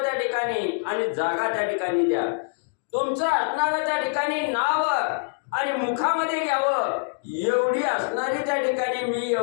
त्या ठिकाणी आणि जागा त्या ठिकाणी द्या. तुमचं असणारं त्या ठिकाणी नाव आणि मुखामध्ये घ्यावं एवढी असणारी त्या ठिकाणी मी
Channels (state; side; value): silent; right; digital silence